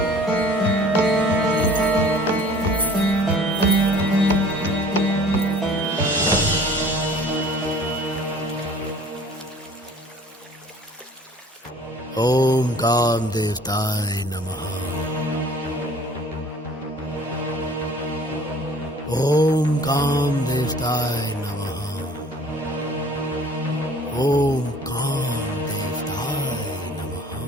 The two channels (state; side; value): normal; both; correlation 0.50